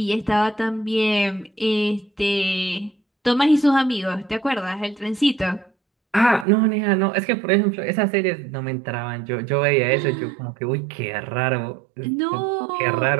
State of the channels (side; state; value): left; drops out; at 6.5 s